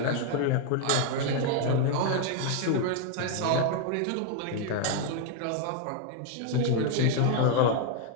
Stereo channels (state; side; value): different; both; correlation 0.00